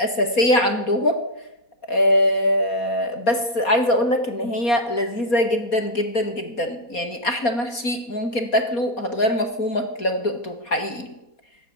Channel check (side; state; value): right; late; 4.2 ms